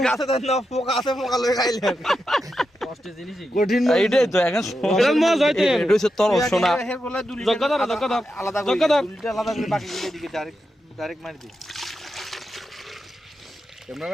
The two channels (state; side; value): normal; both; correlation 0.87